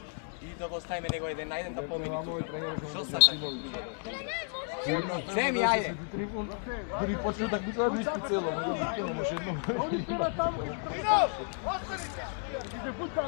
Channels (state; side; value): silent; right; 56 dB below the other